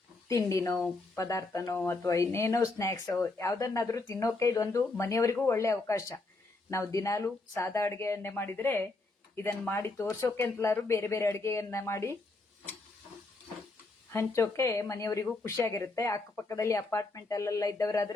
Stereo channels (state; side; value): quieter; right; 3.3 dB